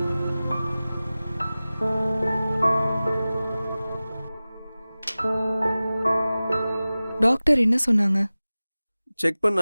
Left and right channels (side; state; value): both; inverted; correlation -0.97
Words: டாக்டர் என்ன சொன்னாங்க? செக்